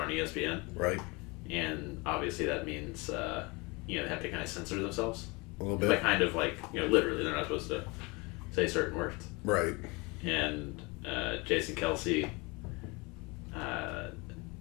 ESPN, Right. and obviously that means, they have to kind of censor themselves. A little bit. Like, kind of like, literally, they're not supposed to say certain words. Right. And Jason Kelce,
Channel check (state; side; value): quieter; right; 26.8 dB